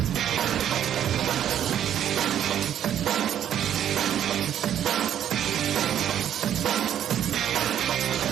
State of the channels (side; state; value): left; quieter; 10.2 dB